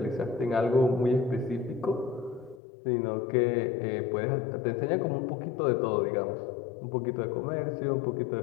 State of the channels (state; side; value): drops out; right; at 2.6 s